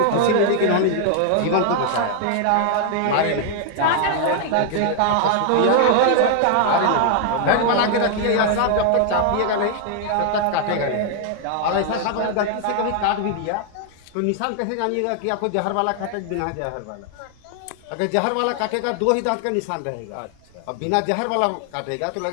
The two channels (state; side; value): different; both; correlation 0.00